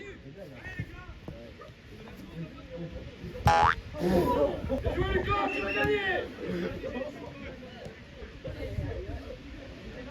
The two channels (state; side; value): identical; both; correlation 1.00